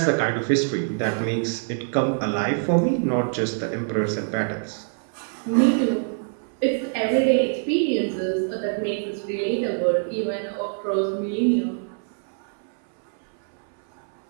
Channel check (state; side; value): silent; left; 62 dB below the other